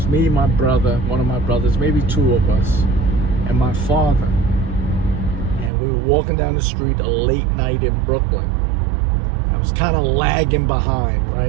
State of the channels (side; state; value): left; drops out; at 5.7 s